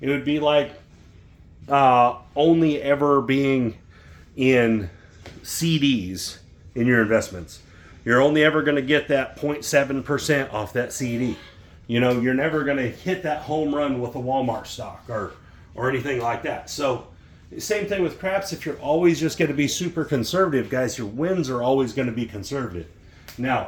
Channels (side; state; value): both; identical; correlation 1.00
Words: would be like only ever being in CDs in your investments. You're only ever going to get that 0.7% off that CD. You know, you're never going to hit that home run with a Walmart stock or anything like that. So Same thing with craps. If you're always just going to be super conservative, guys, your wins are always going to be conservative.